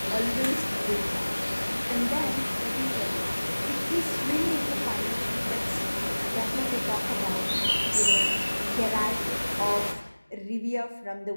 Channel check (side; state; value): both; inverted; correlation -1.00